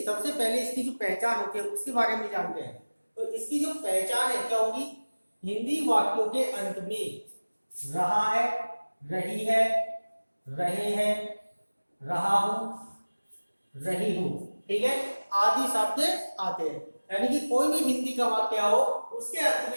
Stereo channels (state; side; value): inverted; both; correlation -1.00